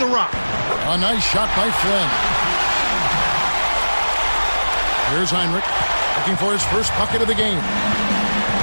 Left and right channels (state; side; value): inverted; both; correlation -1.00